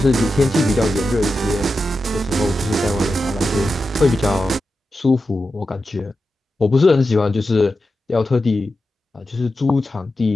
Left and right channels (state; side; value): normal; both; correlation 0.91